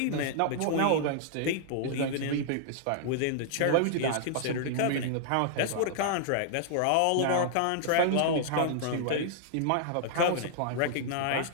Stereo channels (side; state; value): both; different; correlation -0.01